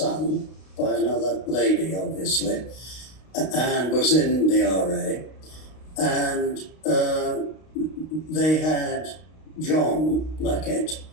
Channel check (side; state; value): right; late; 32 ms